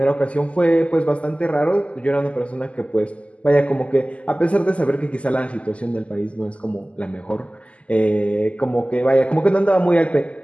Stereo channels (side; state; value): right; late; 0.060 ms